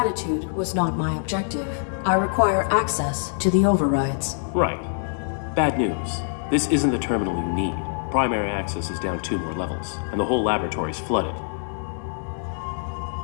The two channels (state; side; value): silent; right; digital silence